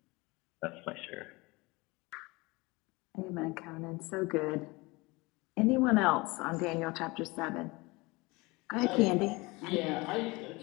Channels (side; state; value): right; quieter; 24.0 dB